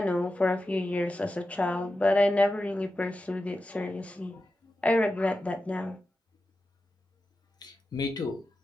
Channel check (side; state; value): both; normal; correlation 0.91